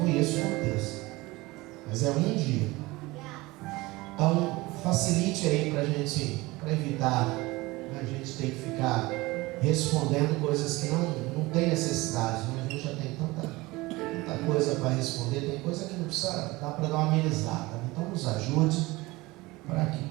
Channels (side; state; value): left; quieter; 21.3 dB